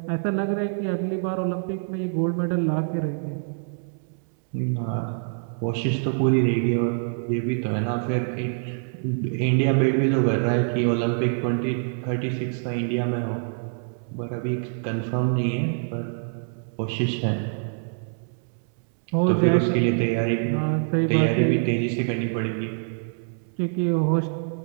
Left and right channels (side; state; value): left; silent; 62 dB below the other